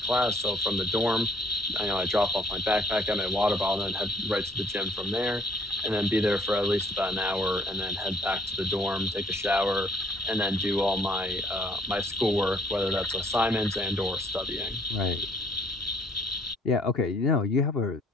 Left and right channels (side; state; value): both; normal; correlation 0.61